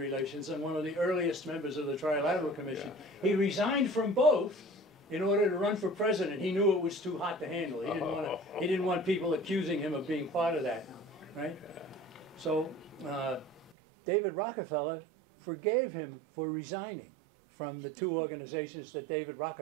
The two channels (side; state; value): left; drops out; at 13.8 s